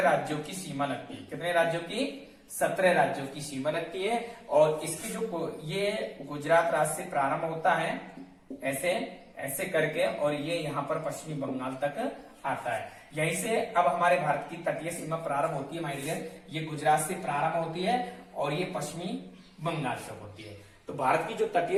राज्यों की सीमा लगती है। कितने राज्यों की? 17 राज्यों की सीमा लगती है। और इसकी जो ये गुजरात राज्य से प्रारंभ होता है ऐसे ऐसे करके और ये यहाँ पर पश्चिमी बंगाल तक आता है। यहीं से अब हमारे भारत की तटीय सीमा प्रारंभ होती है माय डियर। ये गुजरात से प्रारंभ होती है और ये पश्चिमी बंगाल तक होती है। तो भारत की जो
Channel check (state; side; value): identical; both; correlation 1.00